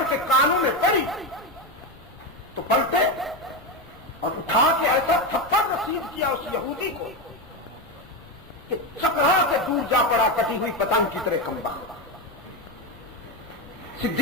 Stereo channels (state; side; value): normal; both; correlation 0.14